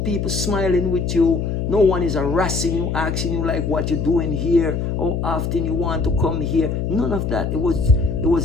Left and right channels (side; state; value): left; noise; hum, 1 dB below the sound